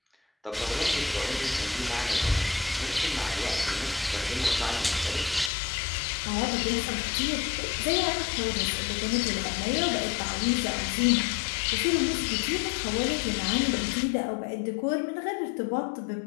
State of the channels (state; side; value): drops out; right; at 5.5 s